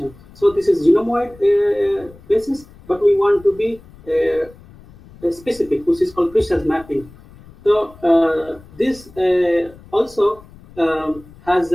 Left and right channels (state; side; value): noise; left; rumble, 23 dB below the sound